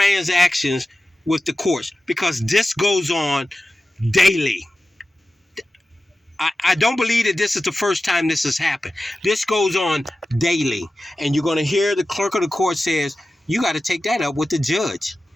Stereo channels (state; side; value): normal; both; correlation 0.94